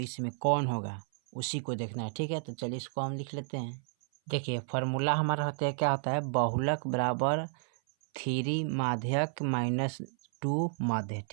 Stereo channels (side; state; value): left; silent; 57 dB below the other